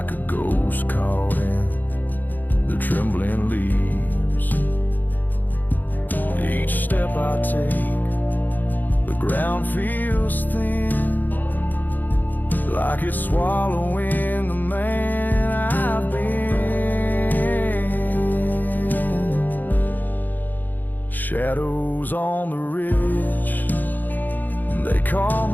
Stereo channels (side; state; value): right; late; 0.086 ms